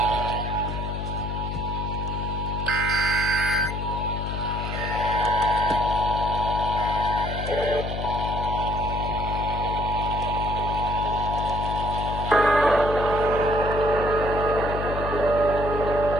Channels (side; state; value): left; noise; hum, 4 dB below the sound